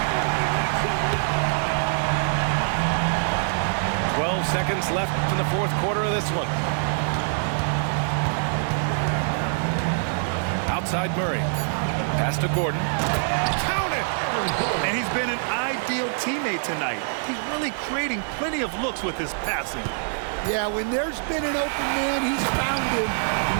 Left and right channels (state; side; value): silent; left; digital silence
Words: Seconds left in the fourth quarter of this one. Outside Murray. Pass to Gordon. Count it! And he's been an ideal teammate tonight. He's really creating plenty of looks with his passing. Yeah, when there's been an open man, he's found him. And